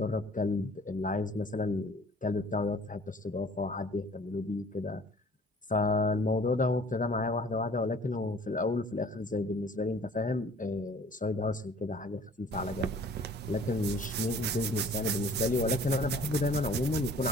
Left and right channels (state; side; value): normal; both; correlation 0.52